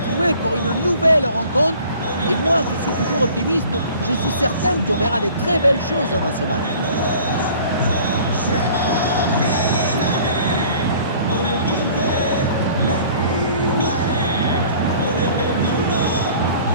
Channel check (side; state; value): both; inverted; correlation -0.50